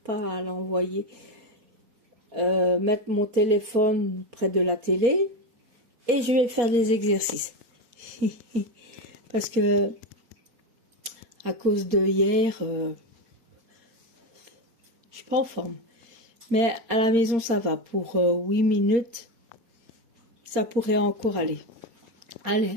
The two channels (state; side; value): late; left; 4.3 ms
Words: à l'envoyer, mettre mon téléphone près de la télé, et je vais faire des exercices. Parce que à cause de hier, je suis pas en forme. Mais à la maison, ça va. Pour 8 minutes, ça pourrait encore aller.